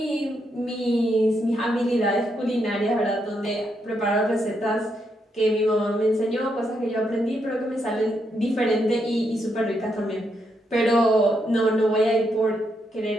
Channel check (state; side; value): normal; both; correlation 0.79